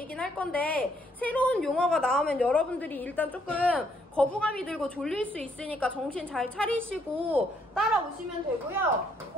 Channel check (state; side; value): normal; both; correlation 0.70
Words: 할 건데 새로운 용어가 나오면 여러분들이 일단 조금 거부감이 들고 졸릴 수 있으니까 정신 잘 차리시고 따라오시면 되고요.